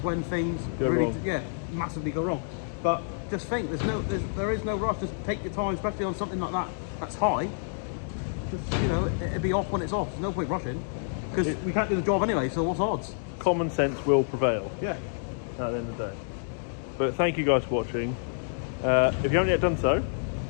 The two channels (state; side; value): silent; right; digital silence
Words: when things Go really, wrong. massively go wrong. But just think. There is no rush. Just take your time, especially on something like that. That's high. Just, it'll be off when it's off. There's no point rushing because we can't do the job anyway. So what's odds? Common sense will prevail. Yeah. At the end of the day. But thank you guys for watching. If you haven't yet done so,